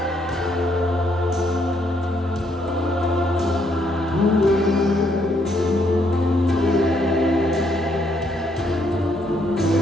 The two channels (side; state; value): both; normal; correlation 0.72